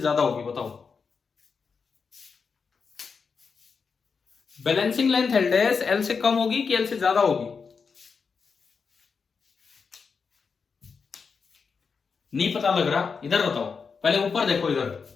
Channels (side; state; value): right; quieter; 5.4 dB